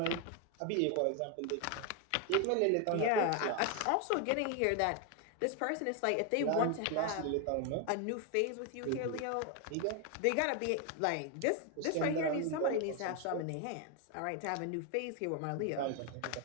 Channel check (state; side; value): different; both; correlation 0.01